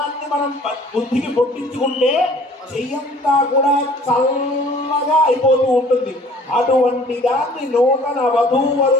మనం బుద్ధికి పొట్టించుకుంటే చెయ్యంతా కూడా చల్లగా అయిపోతూ ఉంటుంది. అటువంటి దాన్ని నూతన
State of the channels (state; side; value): normal; both; correlation 0.52